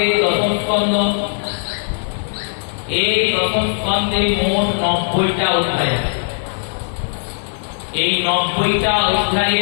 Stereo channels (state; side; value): silent; right; digital silence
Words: দশম স্কন্ধ, এই দশম স্কন্ধে মোট 90টা অধ্যায় আছে। এই 90টা